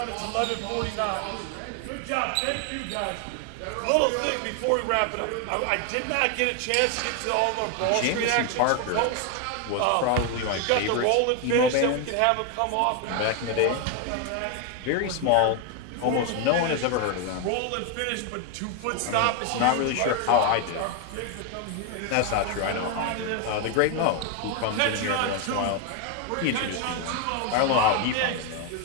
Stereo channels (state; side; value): different; both; correlation 0.01